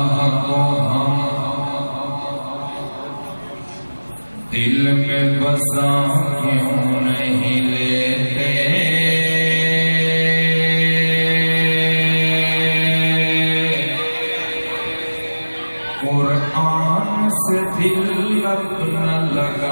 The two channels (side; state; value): both; inverted; correlation -1.00